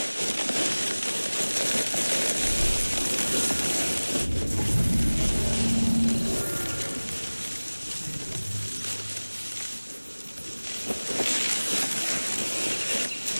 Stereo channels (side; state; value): both; inverted; correlation -1.00